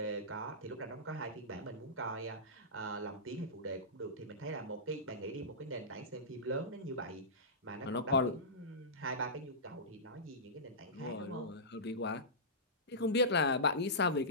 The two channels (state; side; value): normal; both; correlation -0.18